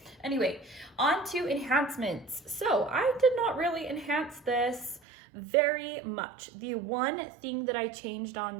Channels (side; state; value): left; drops out; at 5.0 s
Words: anyway, on to enhancements. So I did not really enhance this very much. The one thing that I changed on